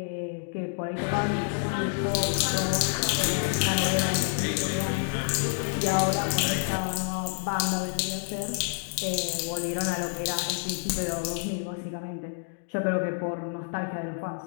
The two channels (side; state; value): right; silent; digital silence